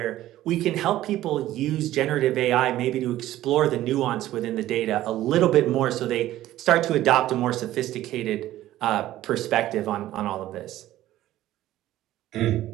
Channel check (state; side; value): quieter; left; 14.3 dB